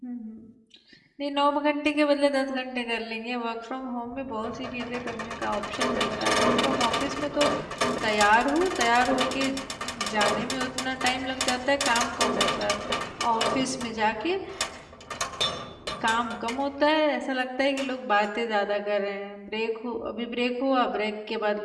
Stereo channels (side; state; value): both; identical; correlation 1.00